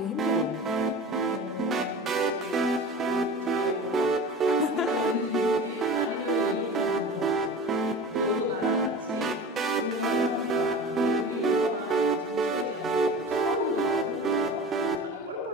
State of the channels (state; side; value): normal; both; correlation 0.35